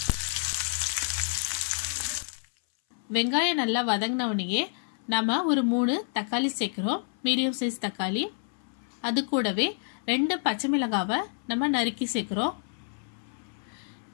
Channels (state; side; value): silent; right; 59 dB below the other